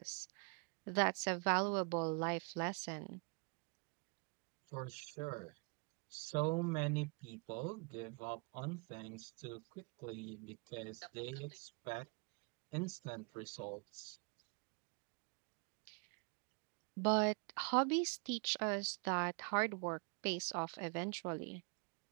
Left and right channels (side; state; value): left; quieter; 34.3 dB